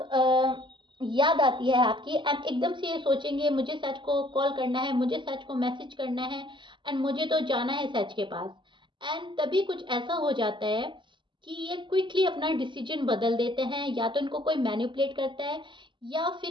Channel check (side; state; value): left; late; 0.23 ms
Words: याद आती है आपकी, एंड एकदम से ये सोचेंगे मुझे सच को कॉल करना है, मुझे सच को मैसेज करना है, एंड मुझे तो जाना है सच के पास। एंड तभी कुछ ऐसा हो जाता है कि ये क्विकली अपना डिसीजन बदल देते हैं, या तो इनको कोई मैनिपुलेट करता है, या